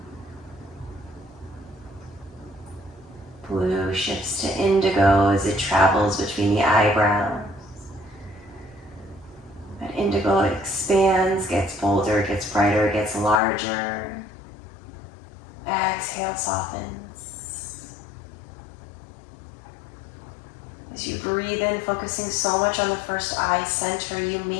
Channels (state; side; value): drops out; right; at 13.4 s